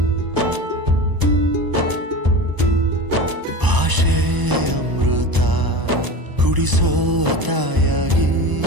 ಭಾಷೆ ಅಮೃತ ಕುಡಿಸೋ ತಾಯಾಗಿ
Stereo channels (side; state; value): left; late; 1.0 ms